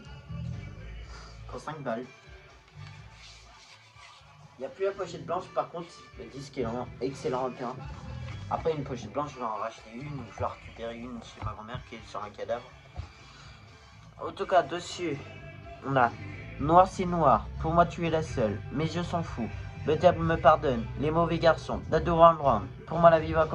pour 5 balles. Il n'y a plus la pochette blanche, par contre le disque est en excellent état. Après une pochette blanche, je vais en racheter une ou je vais récupérer une chez ma grand-mère qui est sur un cadavre. En tout cas, dessus, on a Noir c'est noir, pour moi tu es la seule, mais je s'en fous. Le diable me pardonne, les mauvais garçons, Dado Round Round, pour moi la vie va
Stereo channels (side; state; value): both; identical; correlation 1.00